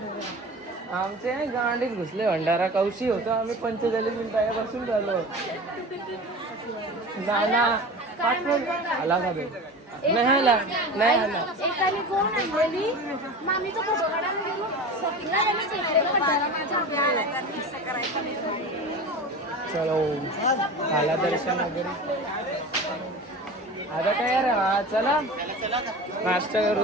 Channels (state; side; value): normal; both; correlation 0.33